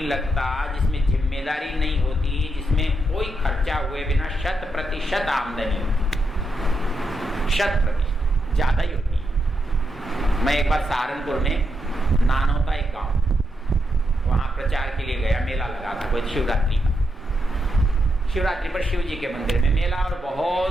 लगता, जिसमें जिम्मेदारी नहीं होती, जिसमें कोई खर्चा हुए बिना 100% आमदनी होती, 100% ज्यादा ही होती है। मैं एक बार सहारनपुर में नानौता एक गांव, वहां प्रचार के लिए गया। मेला लगा था कोई शिवरात्रि का। शिवरात्रि पर शिव जी के मंदिर में मेला, और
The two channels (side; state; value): both; normal; correlation 0.83